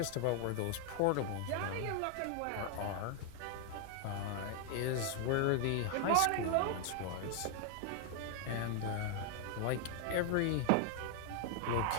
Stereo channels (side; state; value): both; different; correlation 0.00